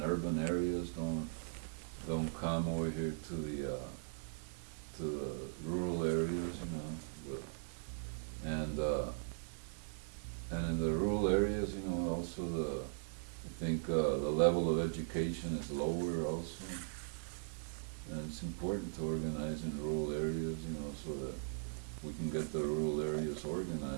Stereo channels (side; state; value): left; silent; 51 dB below the other